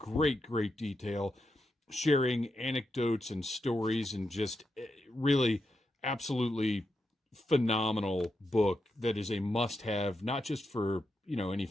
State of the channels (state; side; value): normal; both; correlation 0.85